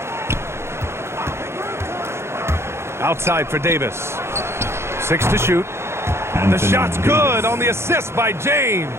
Outside for Davis. 6 to shoot. And the shot's good on the assist by James.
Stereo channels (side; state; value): left; late; 0.13 ms